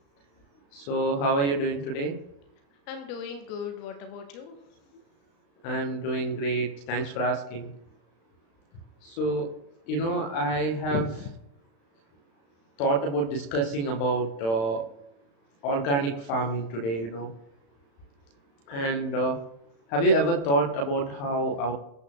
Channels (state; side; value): late; right; 35 ms